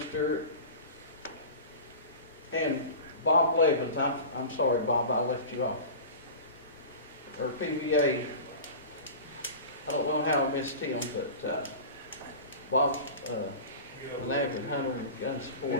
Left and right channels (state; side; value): inverted; both; correlation -0.34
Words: Stewart and Bob Levins. I'm sorry, Bob, I left you off. Or PVA. I don't know how I missed him, but Bob's an avid hunter and gun supporter.